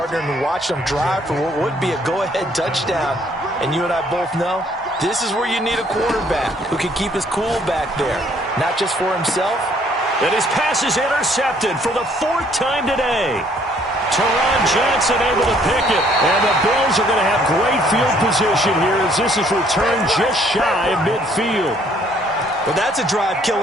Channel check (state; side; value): normal; both; correlation 0.63